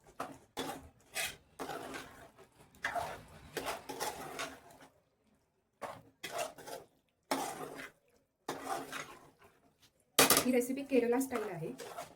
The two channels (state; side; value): identical; both; correlation 1.00